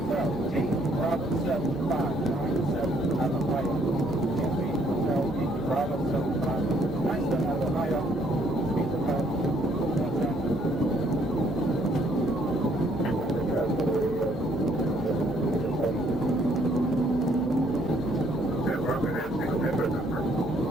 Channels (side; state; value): left; noise; hum, 17 dB below the sound